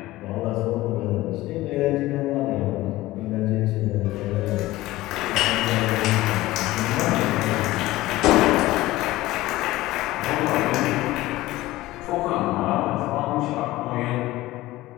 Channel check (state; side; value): quieter; right; 17.7 dB